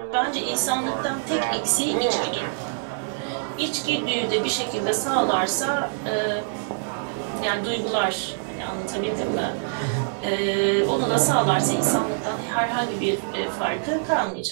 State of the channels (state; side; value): silent; left; digital silence